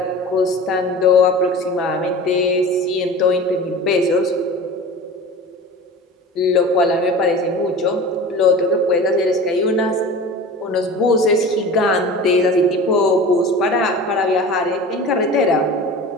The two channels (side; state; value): both; normal; correlation 0.36